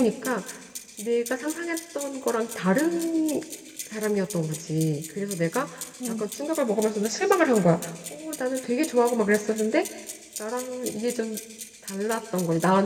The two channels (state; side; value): identical; both; correlation 1.00